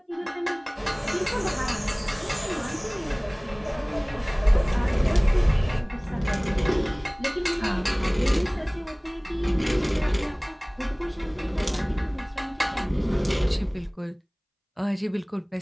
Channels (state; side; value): identical; both; correlation 1.00